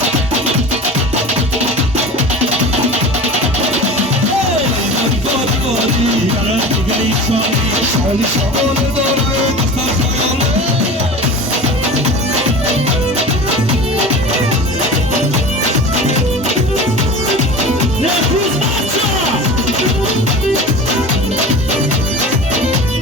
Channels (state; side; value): normal; both; correlation 0.34